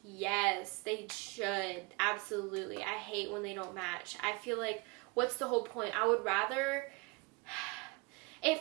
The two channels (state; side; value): quieter; left; 28.3 dB